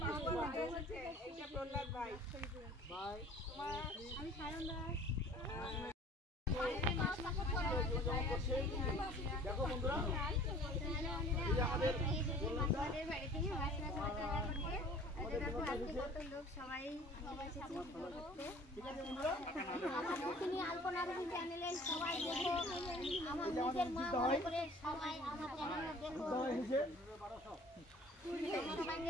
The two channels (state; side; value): normal; both; correlation 0.49